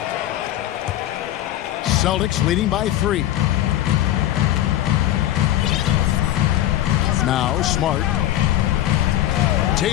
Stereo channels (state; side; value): quieter; right; 13.1 dB